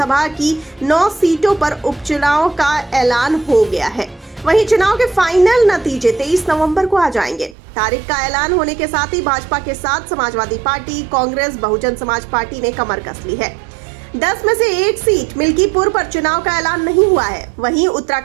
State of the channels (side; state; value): left; drops out; at 7.6 s